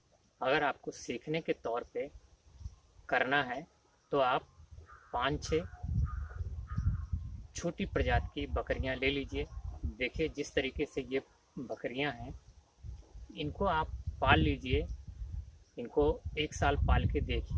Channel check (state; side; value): identical; both; correlation 1.00